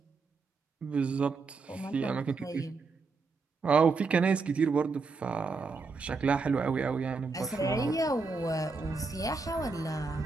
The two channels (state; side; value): quieter; left; 4.3 dB